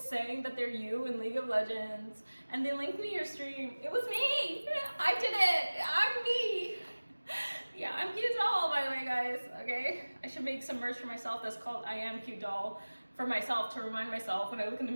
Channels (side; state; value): both; inverted; correlation -1.00